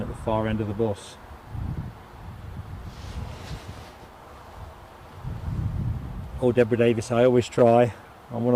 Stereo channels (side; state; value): both; identical; correlation 1.00